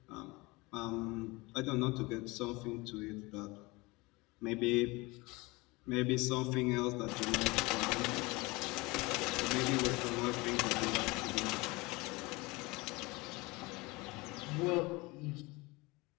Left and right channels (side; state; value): right; quieter; 23.9 dB